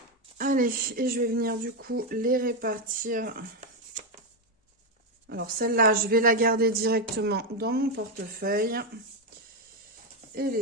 Allez, et je vais venir du coup les répartir. Alors celle-là, je vais la garder directement dans mon portefeuille. Et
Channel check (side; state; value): both; normal; correlation 0.06